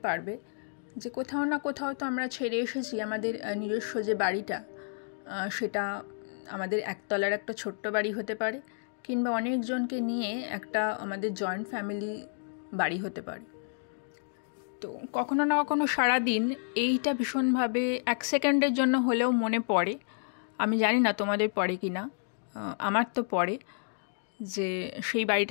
পারবে যে কোথাও না কোথাও তো আমরা ছেড়ে এসেছি আমাদের নিজস্ব যে বাড়িটা, সেটা আমাদের একতলার একটা ছোট্ট বাড়ি হতে পারে, কিংবা অনেকজনকে নিয়ে একটা আমাদের জয়েন্ট ফ্যামিলি বাড়ি হতে পারে। তো কখনো না কখনো সারাদিন এইটা ভীষণভাবে 1 সেকেন্ডের জন্য হলেও মনে পড়ে। আমি জানি না তোমাদের পড়ে কি না, আমার তো পড়ে যে সেই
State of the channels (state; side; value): silent; right; digital silence